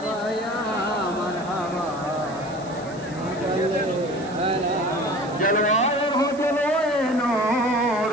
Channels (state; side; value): noise; right; hiss, 22 dB below the sound